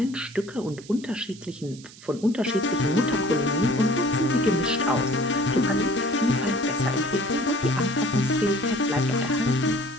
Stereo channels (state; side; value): noise; right; hiss, 20 dB below the sound